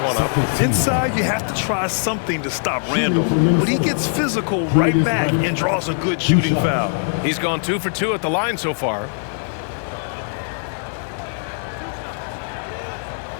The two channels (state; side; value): silent; right; digital silence